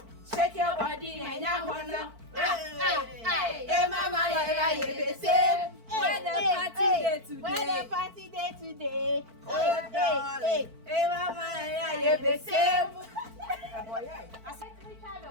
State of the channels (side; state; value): left; late; 4.5 ms